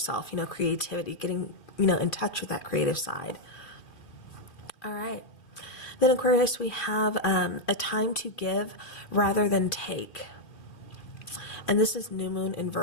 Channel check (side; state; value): right; late; 2.4 ms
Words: creativity, getting, in touch with that creative side. All right. Then Aquarius, we have a time to give rather than take. And this is new moon in